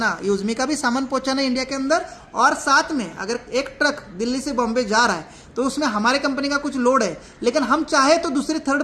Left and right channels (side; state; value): both; identical; correlation 1.00